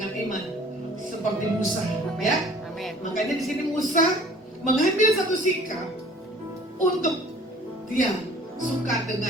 iman seperti Musa, ya. Amin. Makanya di sini Musa mengambil satu sikap untuk dia suka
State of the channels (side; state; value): both; normal; correlation 0.51